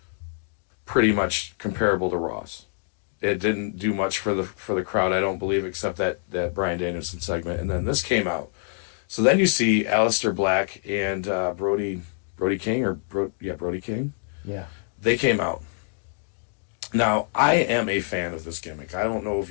pretty much comparable to Raw's. It didn't do much for the crowd, I don't believe, except that Bryan Danielson segment. And then this came out. So then you see Aleister Black and Brody King, Brody King. Yeah. They came out. Now, I am a fan of this gimmick. I don't know if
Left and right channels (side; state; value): right; silent; digital silence